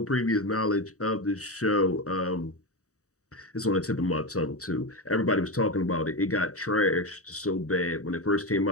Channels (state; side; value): late; right; 0.65 ms